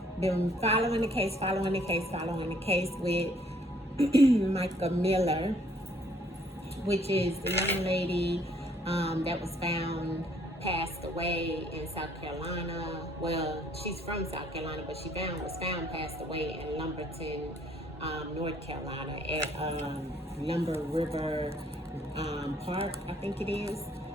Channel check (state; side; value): normal; both; correlation 0.63